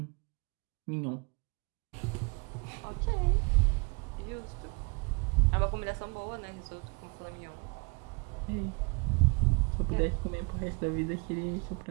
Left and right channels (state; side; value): quieter; left; 30.9 dB